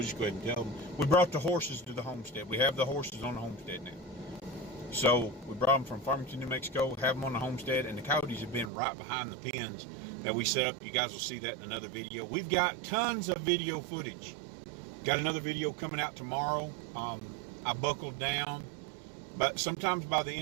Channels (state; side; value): drops out; left; at 8.7 s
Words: just go ahead and tell them. We brought the horses to the homestead. We have the horses on the homestead now. So we brought them from Farmington, New Mexico, have them on the homestead, and the coyotes have been right behind the pens that we set up. You guys will see that in another video. We've got tons of video footage. Got another video coming out tomorrow. I buckled down, but sometimes by the